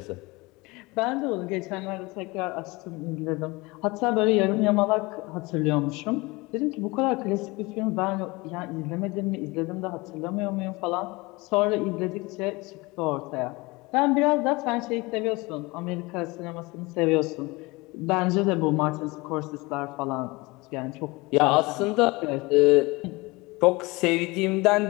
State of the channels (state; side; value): quieter; right; 24.2 dB